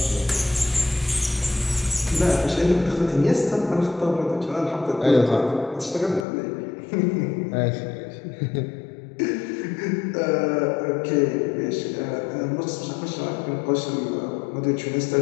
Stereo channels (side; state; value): right; drops out; at 6.2 s